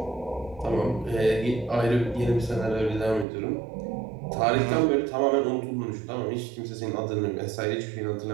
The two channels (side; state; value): left; drops out; at 3.2 s